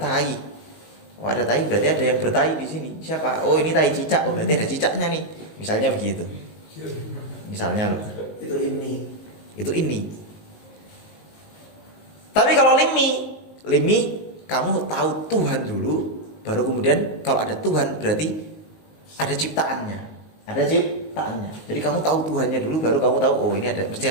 Berarti ada yang bertai di sini. Siapa? Oh, ini tai cicak. Oh, berarti ada cicaknya nih. Misalnya begitu. Misalnya Itu ini. Tapi kalau limi kamu tahu Tuhan dulu, baru kemudian kalau ada Tuhan berarti ada ciptaannya. Jadi kamu tahu Tuhannya dulu, baru kamu tahu, oh ini mesti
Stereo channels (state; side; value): late; right; 19 ms